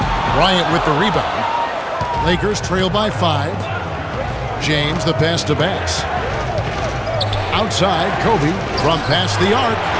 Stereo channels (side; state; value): both; identical; correlation 1.00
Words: Bryant with the rebound. Lakers trail by 5. James the pass to Bass. Outside, Kobe from past the arc.